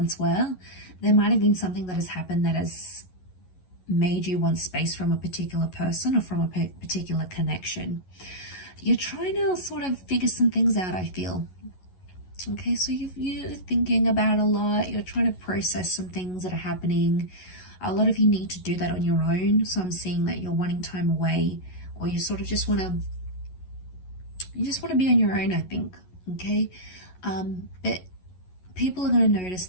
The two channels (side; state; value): right; late; 11 ms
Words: were. There might have been something that has happened that has made you want space from a particular person or from a particular connection. You're trying to sort of figure some things out, I feel. Okay, so you're thinking about a lot. You're trying to process some things that are happening. A lot of you need to do that on your own. So I'm seeing that you're wanting time away, or you sort of just want to be on your own, I think. Okay, but people are going to notice